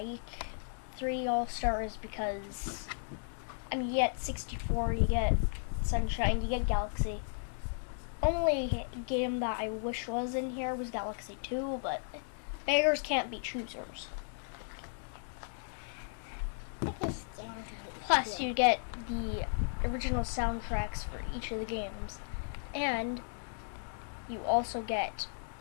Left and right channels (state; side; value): silent; right; digital silence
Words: 3D All-Stars because you get 64, you get Sunshine, you get Galaxy. Only game that I wish was in here was Galaxy 2, but beggars can't be choosers. Plus, you get the original soundtracks for each of the games, and you also get